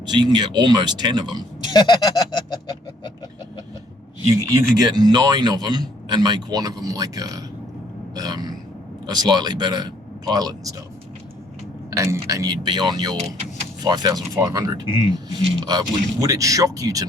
So you can get almost 10 of them. You could get 9 of them and make one of them like a slightly better pilot and stuff, and you'd be on your 5,500. Would it shock you to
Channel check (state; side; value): normal; both; correlation 0.64